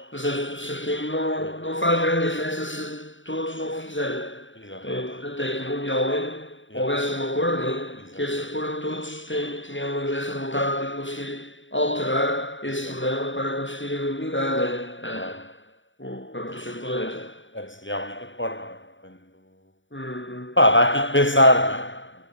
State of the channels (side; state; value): right; late; 0.55 ms